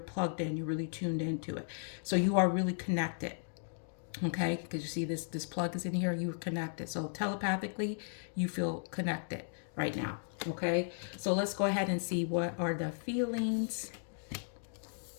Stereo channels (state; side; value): silent; right; digital silence